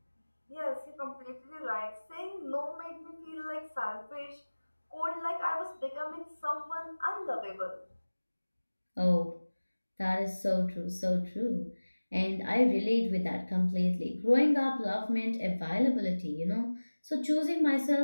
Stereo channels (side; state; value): both; inverted; correlation -1.00